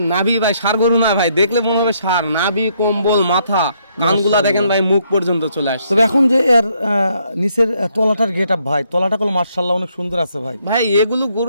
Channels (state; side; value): inverted; both; correlation -0.71